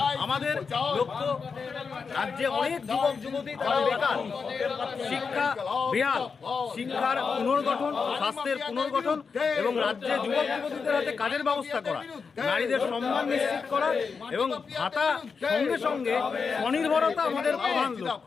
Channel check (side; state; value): right; quieter; 5.4 dB